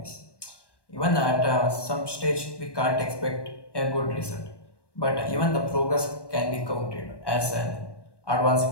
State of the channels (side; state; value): right; late; 1.2 ms